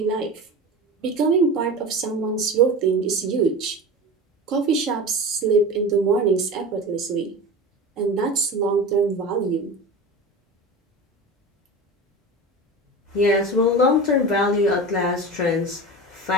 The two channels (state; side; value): normal; both; correlation 0.30